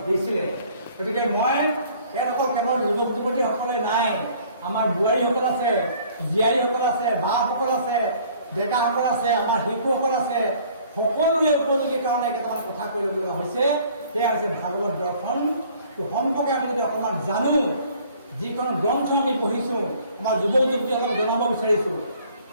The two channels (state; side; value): inverted; both; correlation -0.56